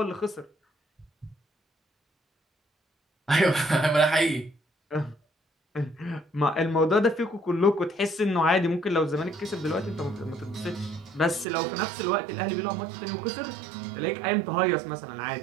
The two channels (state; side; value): drops out; left; at 11.5 s